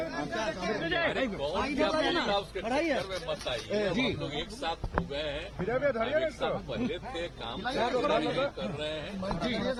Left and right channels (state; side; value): identical; both; correlation 1.00